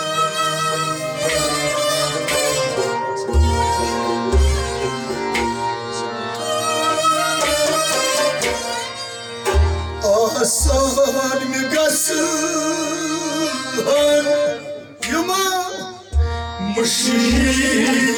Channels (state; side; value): identical; both; correlation 1.00